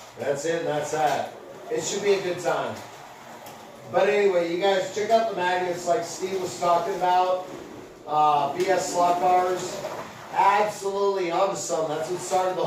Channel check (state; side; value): identical; both; correlation 1.00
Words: That's it, and that's that. It should be a good time. But anyway, you guys check out the magnets like Steve was talking about. BS slot cars. Absolutely onto something. That's what started the